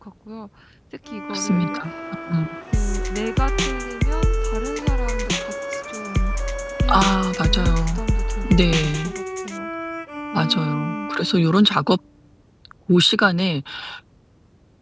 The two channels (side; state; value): both; identical; correlation 1.00